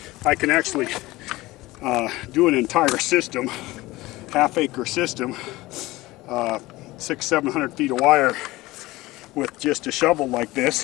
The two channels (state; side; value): quieter; right; 19.2 dB